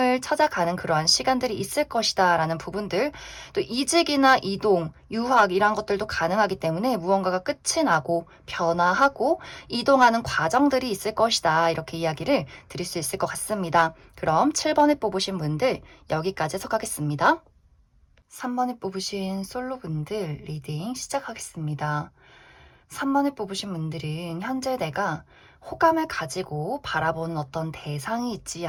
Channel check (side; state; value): both; identical; correlation 1.00